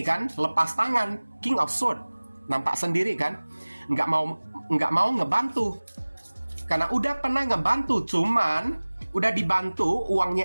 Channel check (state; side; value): inverted; both; correlation -1.00